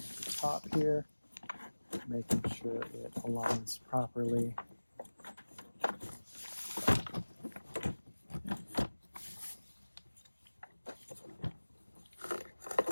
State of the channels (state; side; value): inverted; both; correlation -1.00